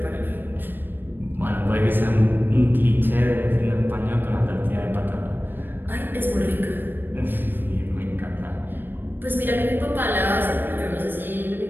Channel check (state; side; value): late; left; 0.095 ms